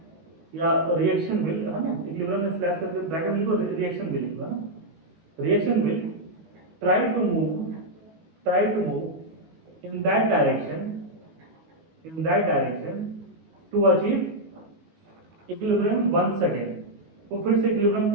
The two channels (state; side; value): late; left; 19 ms